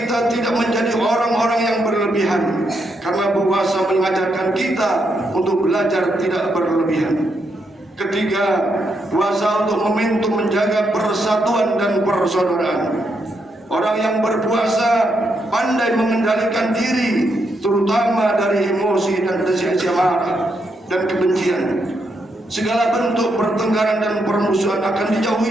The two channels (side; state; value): both; normal; correlation 0.80